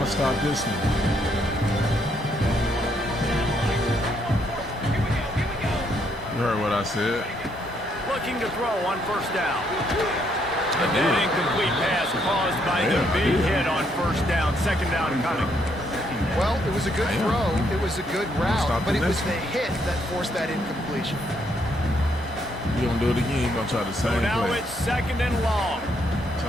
stop this one. You heard what I said. Looking to throw on first down. I And did. that incomplete pass caused by the Yeah, I big did. hit on first down. Second down coming. Well, it was a good I am. throw, it was a good route, Stop but the it was next the hit that forced that incompletion. You gonna do it again, you gonna try the So same now play. it's second and long. That's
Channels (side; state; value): both; normal; correlation 0.73